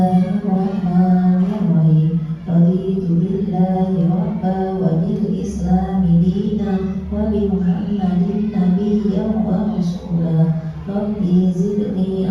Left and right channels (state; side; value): identical; both; correlation 1.00